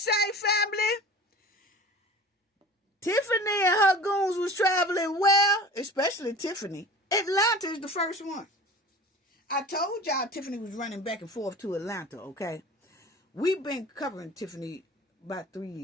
family? Tiffany and her goons was traveling well, especially Tiffany. Atlanta is the first one. I told y'all Tiffany was running back and forth to Atlanta, okay? We've been covering Tiffany about 3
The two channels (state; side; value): normal; both; correlation 0.40